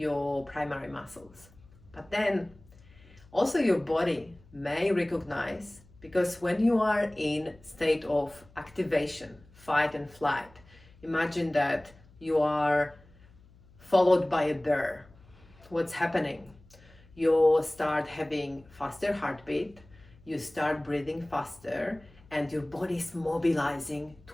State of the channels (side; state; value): left; noise; hum, 26 dB below the sound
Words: primary muscles. But then also your body may recognize, because when you are in state of activation, fight and flight, imagine that you are followed by a bear. What's happening? You start having faster heartbeat, you start breathing faster, and your body is mobilizing